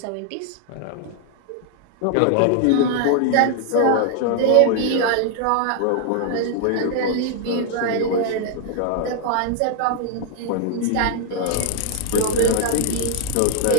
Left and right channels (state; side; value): different; both; correlation 0.00